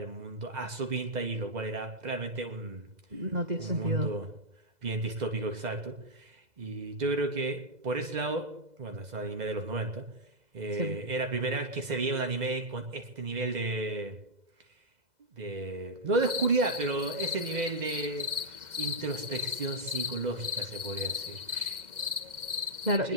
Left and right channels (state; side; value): late; left; 2.0 ms